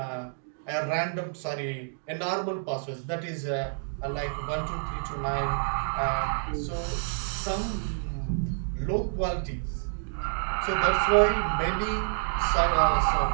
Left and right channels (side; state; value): left; silent; digital silence